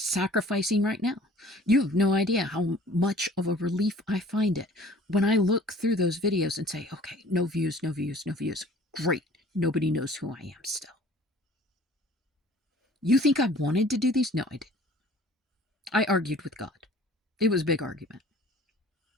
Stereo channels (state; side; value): normal; both; correlation 0.50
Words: right now. You have no idea how much of a relief I find it when I look through those videos and say, okay, no views, no views, no views. Great. Nobody knows who I am still. You think I wanted to do these? No, I didn't. I argued with God. It was a big argument.